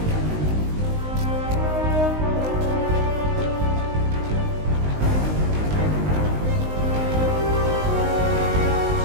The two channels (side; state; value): left; late; 19 ms